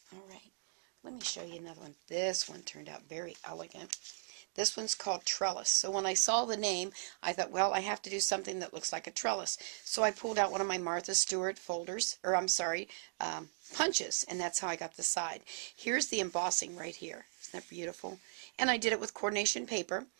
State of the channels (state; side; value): silent; left; digital silence